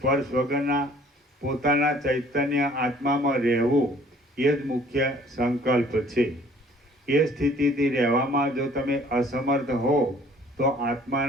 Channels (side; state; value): both; normal; correlation 0.56